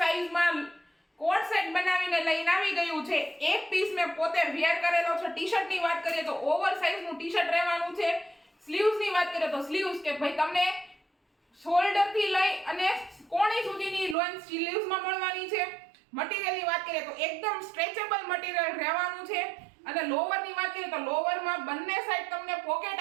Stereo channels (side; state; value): left; drops out; at 14.2 s